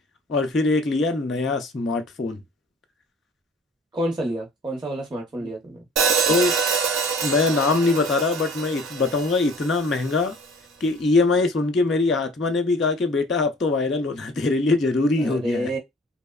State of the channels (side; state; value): both; normal; correlation 0.49